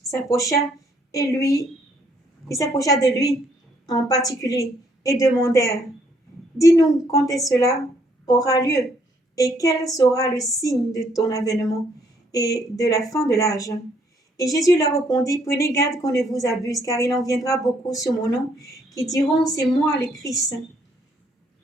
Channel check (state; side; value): normal; both; correlation 0.68